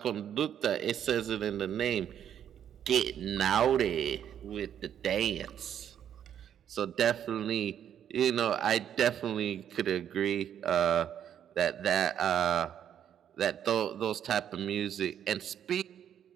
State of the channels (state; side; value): quieter; left; 9.5 dB